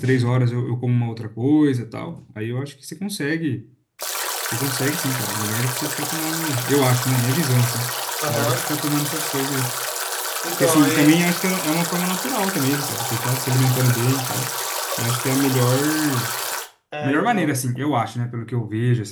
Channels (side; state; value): both; identical; correlation 1.00